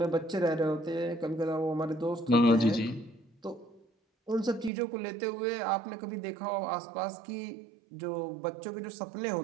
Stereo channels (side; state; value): left; drops out; at 4.7 s